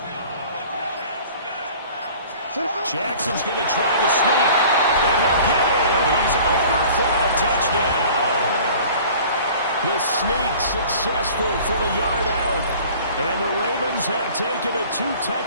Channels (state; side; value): inverted; both; correlation -0.46